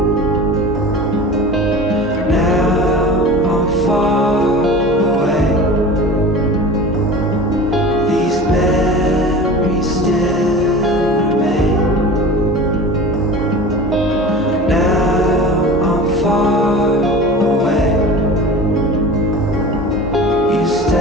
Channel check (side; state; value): both; normal; correlation 0.36